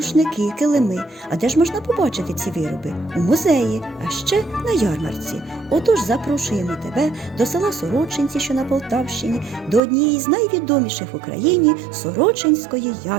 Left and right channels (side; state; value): left; drops out; at 9.8 s